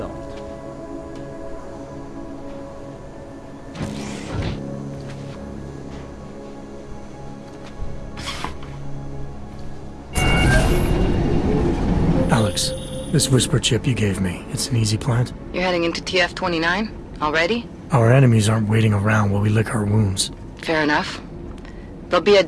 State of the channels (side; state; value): both; identical; correlation 1.00